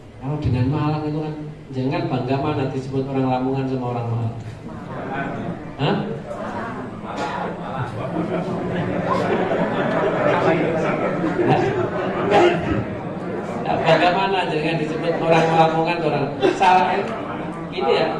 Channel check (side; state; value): both; identical; correlation 1.00